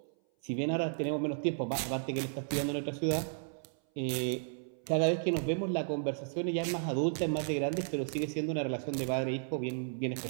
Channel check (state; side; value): silent; left; 55 dB below the other